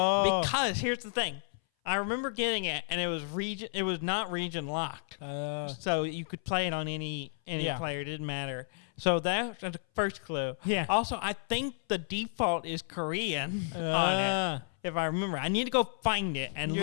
Because here's the thing. I remember getting it, and it was not region locked. So you could play it on any player. It didn't matter. So that's the first clue. Yeah. Also, I think the default is Korean on it. If I remember, I need to go find it and You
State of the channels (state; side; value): silent; right; 57 dB below the other